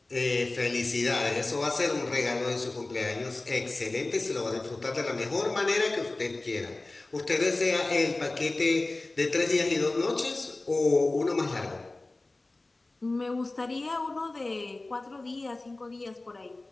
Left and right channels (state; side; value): quieter; right; 3.0 dB